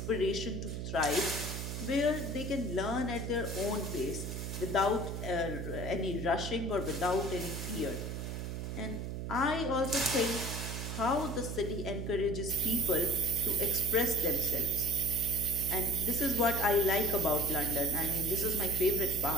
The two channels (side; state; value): right; noise; hum, 5 dB below the sound